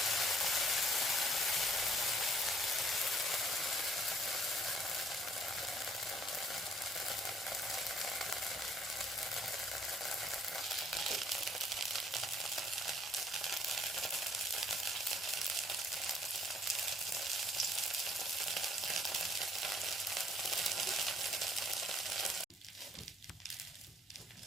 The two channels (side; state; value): both; normal; correlation 0.61